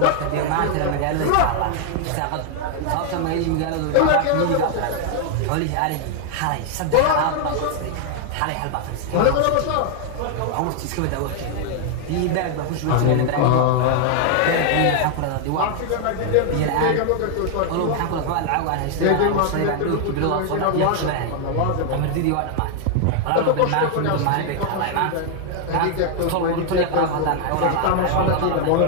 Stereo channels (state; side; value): different; both; correlation 0.00